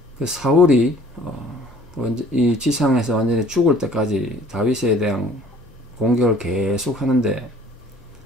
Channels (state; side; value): normal; both; correlation 0.53